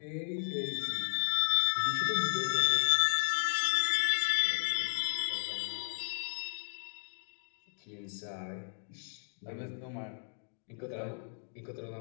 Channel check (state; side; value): silent; right; digital silence